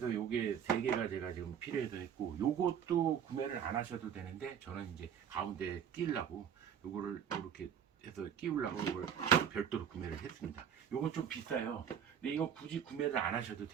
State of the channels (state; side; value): quieter; left; 8.2 dB